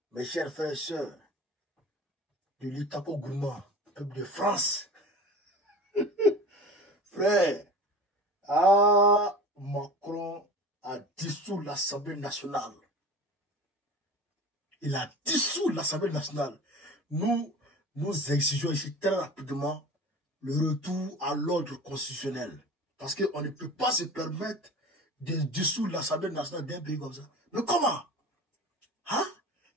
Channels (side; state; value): both; normal; correlation 0.37